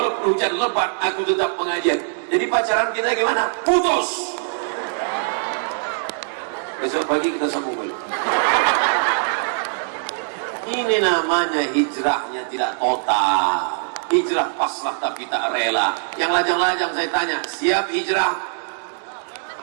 hujan lebat, aku tetap pengajian. Jadi pacaran kita gimana? Putus. Besok pagi kita sambung balik. Ini namanya hijrahnya tidak total. Hijrah pasrah tapi tak rela. Yang lajang-lajang saya tanya, siap hijrah?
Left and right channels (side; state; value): left; silent; digital silence